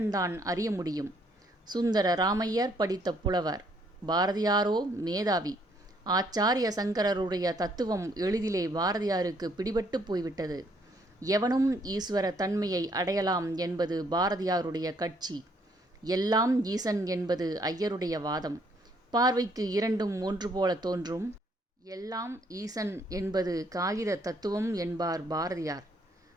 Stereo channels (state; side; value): normal; both; correlation 0.67